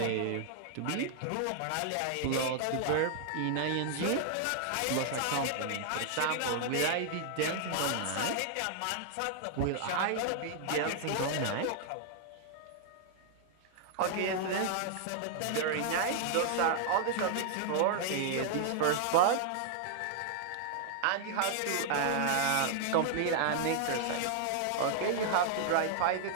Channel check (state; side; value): different; both; correlation -0.01